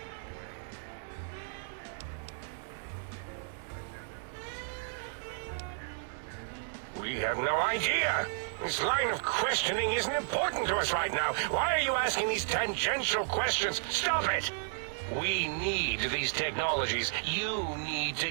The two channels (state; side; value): silent; left; digital silence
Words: We have no idea. This line of questioning isn't important to us right now. Why are you asking these tangential questions? Stop it! We need these technologies. You need to